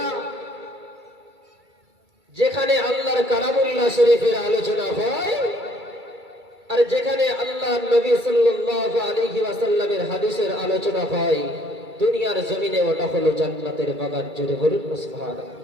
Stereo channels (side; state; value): left; late; 2.3 ms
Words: যেখানে আল্লাহর কালামুল্লাহ শরীফের আলোচনা হয় আর যেখানে আল্লাহর নবী সাল্লাল্লাহু আলাইহি ওয়াসাল্লামের হাদিসের আলোচনা হয়। দুনিয়ার জমিনে ওটা হলো জান্নাতের বাগান। জোরে বলুন না সুবহানাল্লাহ।